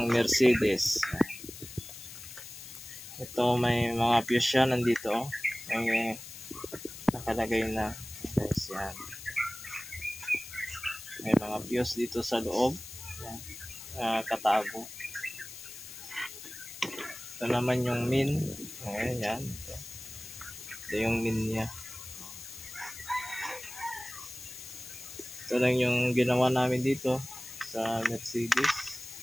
Mercedes. Ito may mga fuse siya nandito. May nakalagay na guys, yan. May mga fuse dito sa loob. Yan, katago. Ito naman yung min. Ayan, yan. Ito yung min niya. Ito lang yung ginawa namin dito sa Mercedes.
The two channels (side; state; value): left; noise; hiss, 13 dB below the sound